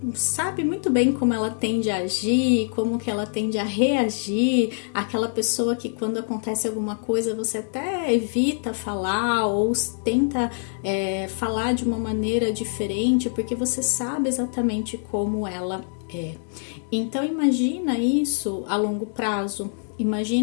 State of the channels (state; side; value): silent; right; digital silence